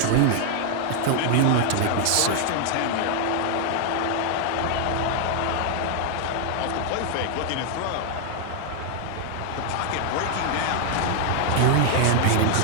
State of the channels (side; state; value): both; different; correlation 0.00